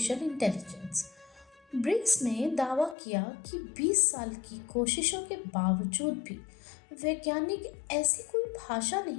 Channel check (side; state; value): right; drops out; at 3.0 s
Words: intelligence. Briggs ने दावा किया कि 20 साल की कोशिशों के बावजूद भी वैज्ञानिक ऐसी कोई भाषा